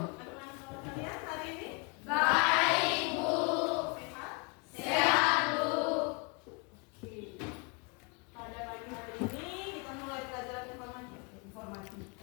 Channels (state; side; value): quieter; right; 32.1 dB